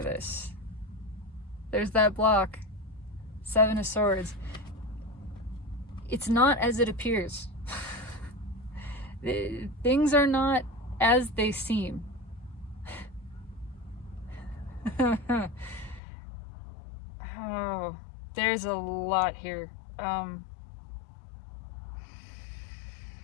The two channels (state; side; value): drops out; right; at 16.0 s